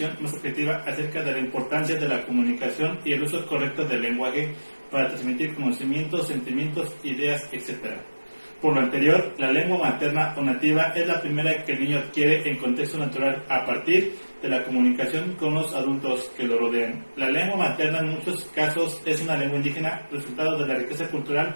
más objetiva acerca de la importancia de la comunicación y el uso correcto del lenguaje para transmitir conocimientos, sentimientos, ideas, etc. Por lo anterior, la lengua materna o nativa es la primera que el niño adquiere en contexto natural a partir de la comunicación con los adultos que lo rodean. La lengua materna en muchos casos es una lengua indígena, resultado de la riqueza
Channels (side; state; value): both; inverted; correlation -1.00